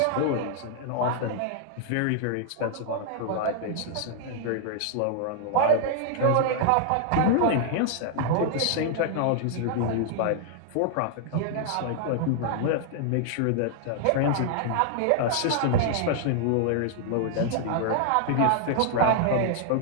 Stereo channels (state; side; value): different; both; correlation -0.01